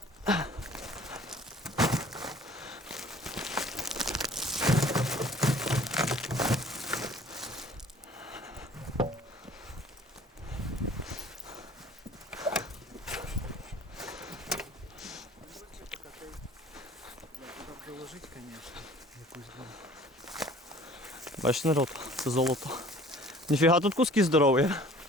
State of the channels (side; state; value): both; normal; correlation 0.50